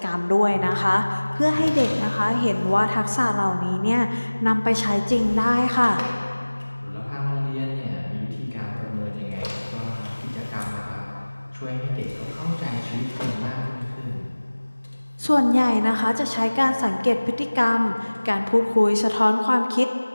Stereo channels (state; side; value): inverted; both; correlation -1.00